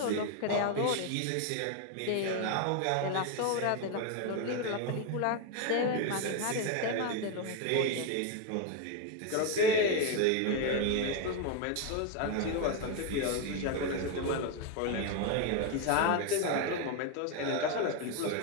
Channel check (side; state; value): both; different; correlation 0.01